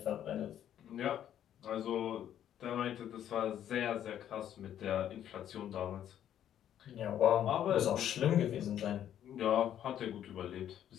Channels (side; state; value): right; quieter; 10.5 dB